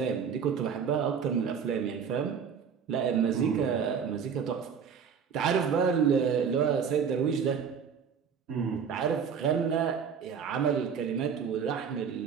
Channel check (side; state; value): left; quieter; 6.9 dB